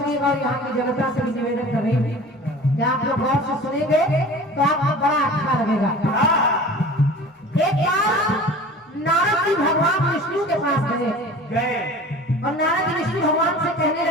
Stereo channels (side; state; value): both; normal; correlation 0.40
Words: सुनिएगा। और यहाँ की जनता से भी निवेदन कर रही हूँ कि आप लोग गौर से सुनेंगे तो आपको बड़ा अच्छा लगेगा। एक बार नारद जी भगवान विष्णु के पास गए और नारद जी विष्णु भगवान से कहने